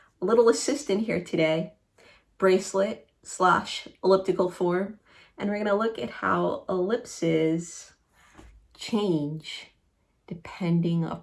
assistant here today, bracelet / elliptical form, and we're going to look at how ellipses change depending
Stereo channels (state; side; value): identical; both; correlation 1.00